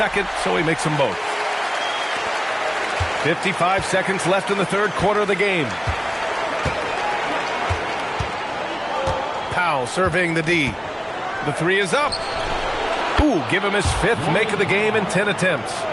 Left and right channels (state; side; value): identical; both; correlation 1.00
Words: so he makes them both. 55 seconds left in the third quarter of the game. Powell surveying the D. The three is up. Ooh, give him his fifth make of the game in 10 attempts.